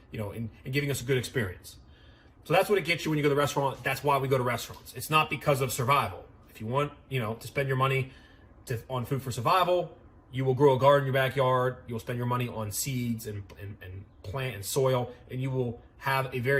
and giving us a good experience. So that's what it gets you when you go to the restaurant. That's why we go to restaurants. It's not because of survival. If you want, to spend your money on food for survival, you will grow a garden in your backyard. You'll spend your money on seeds and plant and soil, and you will have a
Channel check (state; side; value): identical; both; correlation 1.00